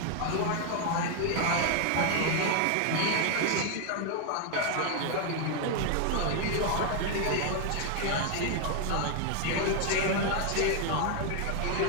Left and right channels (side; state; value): both; different; correlation 0.00